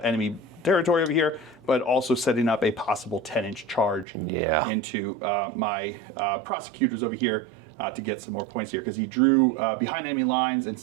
territory over here, but also setting up a possible 10-inch charge into my prosecutors over here to get some more points here, because he drew behind enemy lines and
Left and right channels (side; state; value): left; drops out; at 4.0 s